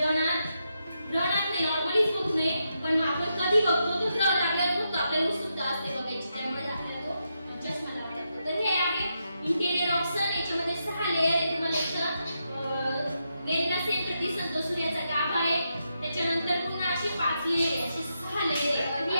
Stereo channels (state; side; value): inverted; both; correlation -0.84